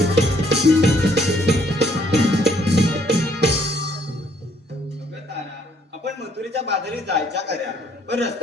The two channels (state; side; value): normal; both; correlation 0.65